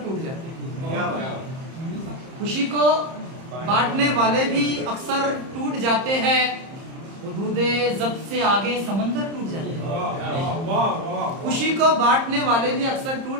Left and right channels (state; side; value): late; left; 30 ms